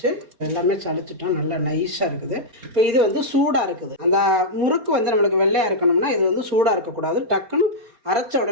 எல்லாமே சளிச்சிட்டோம், நல்லா நைஸாக இருக்குது. இப்போ இது வந்து சூடாக இருக்குது. அந்த முறுக்கு வந்து நம்மளுக்கு வெள்ளையாக இருக்கணும்னா இது வந்து சூடாக இருக்கக்கூடாது. டக்குன்னு அரைச்ச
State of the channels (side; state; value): left; late; 4.3 ms